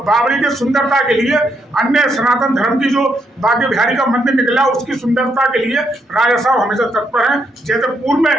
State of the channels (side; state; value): both; normal; correlation 0.77